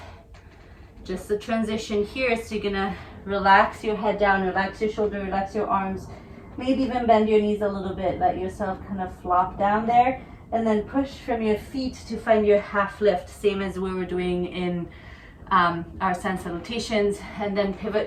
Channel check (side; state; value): both; identical; correlation 1.00